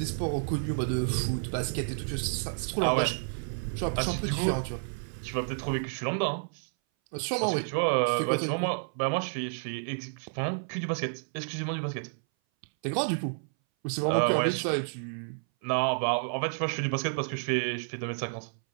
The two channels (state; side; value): silent; left; 58 dB below the other